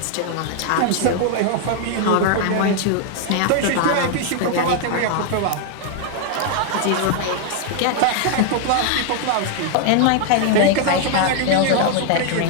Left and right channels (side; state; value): both; different; correlation 0.00